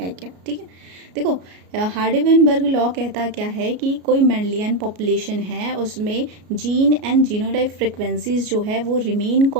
क्या। ठीक है, देखो हार्डी-वेनबर्ग लॉ कहता क्या है कि कोई मेंडेलियन पॉपुलेशन है, उसमें जीन एंड जीनोटाइप फ्रिक्वेंसीज जो है वो रिमेन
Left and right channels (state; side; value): late; left; 33 ms